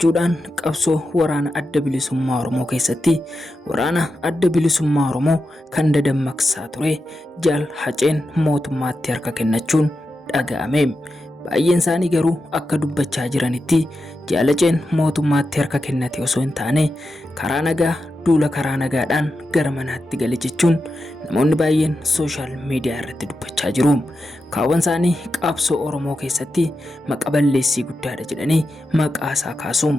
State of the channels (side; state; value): both; normal; correlation 0.89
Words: qabsoo waraana adda bilisummaa Oromoo keessatti waraana adda bilisummaa Oromoo kan dadammaqsaa ture Jaal Haceen mootummaatti harka kennachuun dhaga'ame. Baay'een isaanii garuu akka dubbachaa jiranitti Jaal Haceen mootummaatti harka kennate osoo hin taane karaa nagaa duula karaa nagaadhaan gara manaatti gale jechuun namoonni baay'een sooshaal miidiyaa irratti dubbachaa jiru. Kaawwan isaanii qabsoo Oromoo keessatti maqaa balleessii guddaadha jedhanii maqaa isaa